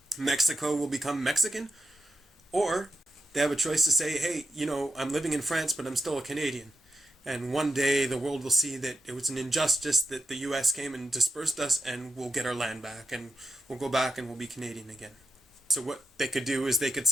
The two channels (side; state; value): both; normal; correlation 0.85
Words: Mexico will become Mexican, or they have a choice to say, hey, I'm living in France, but I'm still a Canadian. And one day the world will see that it was an injustice that the US came and dispersed us, and we'll get our land back, and we'll go back and we'll be Canadian again. So what they could do is they could